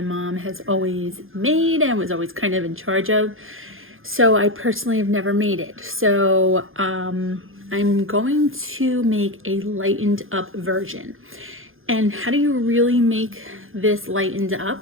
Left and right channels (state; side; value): late; left; 0.60 ms